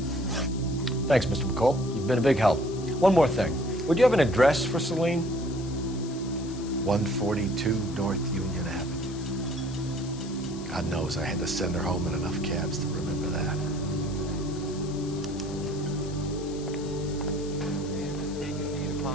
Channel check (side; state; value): left; noise; hiss, 17 dB below the sound